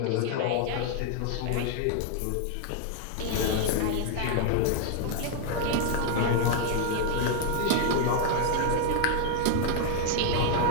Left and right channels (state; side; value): different; both; correlation 0.00